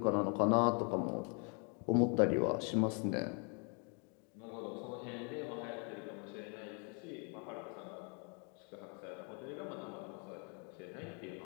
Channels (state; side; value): quieter; right; 37.6 dB